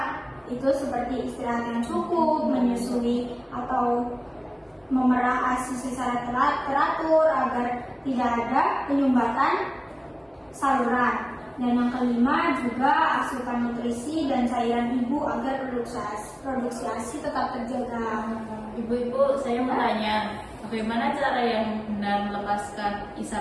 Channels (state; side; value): identical; both; correlation 1.00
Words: Itu seperti istirahat yang cukup, menyusui atau memerah ASI secara teratur agar tidak ada penyumbatan saluran. Dan yang kelima juga asupan nutrisi dan cairan ibu agar produksi ASI tetap terjaga. Ibu-ibu, saya mau tanya, bagaimana cara yang benar melepaskan